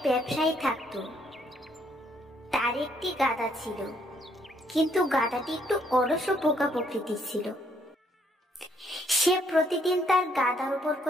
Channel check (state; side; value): normal; both; correlation 0.68